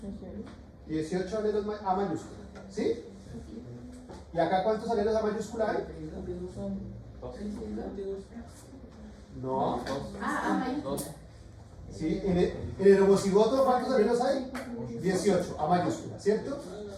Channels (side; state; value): both; identical; correlation 1.00